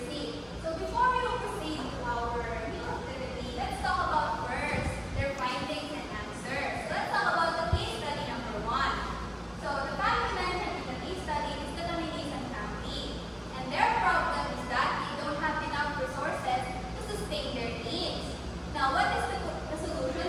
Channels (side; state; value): both; identical; correlation 1.00